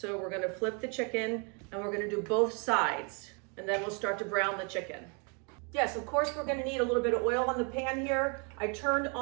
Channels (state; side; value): quieter; left; 35.6 dB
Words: we're gonna flip the chicken and we're gonna do both sides, and then we'll start to brown the chicken. Yes, of course, we're gonna need a little bit of oil on the pan here. I turned